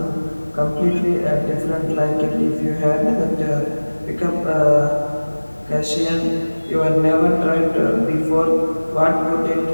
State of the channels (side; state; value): both; inverted; correlation -1.00